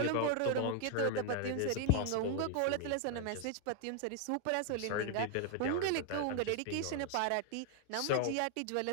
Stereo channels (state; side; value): different; both; correlation 0.00